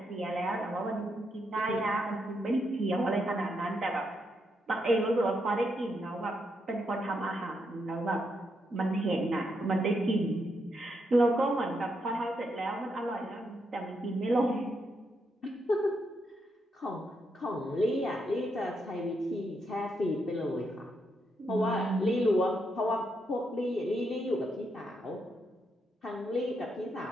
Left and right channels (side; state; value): both; normal; correlation 0.80